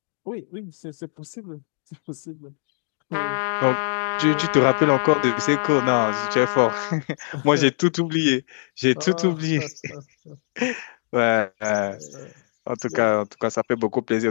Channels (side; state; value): right; silent; digital silence